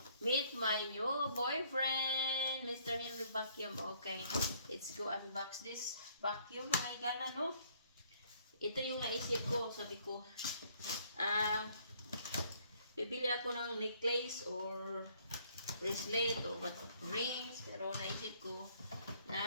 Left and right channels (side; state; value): both; inverted; correlation -0.64